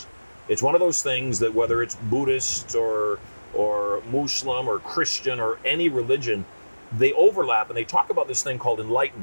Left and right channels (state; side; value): inverted; both; correlation -1.00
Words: It's one of those things that whether it's Buddhist or Muslim or Christian or any religion, they overlap and they talk about this thing called